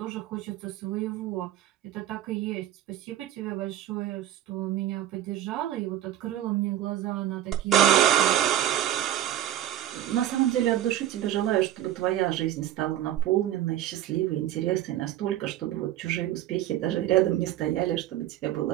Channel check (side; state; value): left; quieter; 12.2 dB